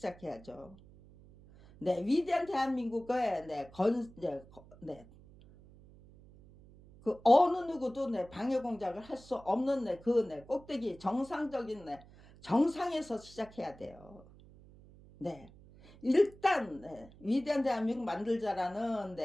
위대한 대한민국의 그 어느 누구도 방해 공작을 할 수 없는 꼭대기 정상적인 정상에서 시작해야 돼요. 일단 위대한 대한민국 만들자라는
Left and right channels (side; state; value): right; noise; hum, 22 dB below the sound